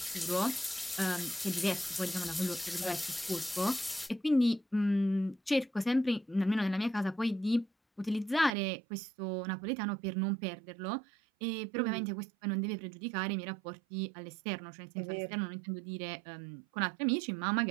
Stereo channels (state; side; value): drops out; left; at 8.5 s